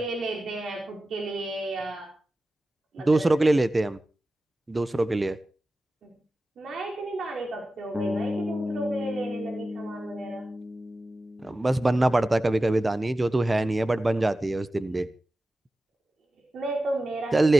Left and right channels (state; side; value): normal; both; correlation 0.94